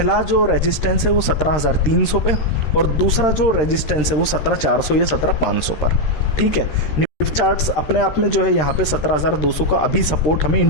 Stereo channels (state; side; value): late; right; 13 ms